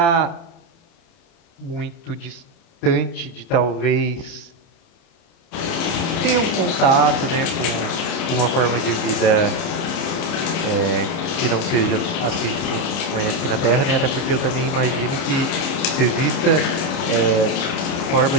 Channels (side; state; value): right; late; 29 ms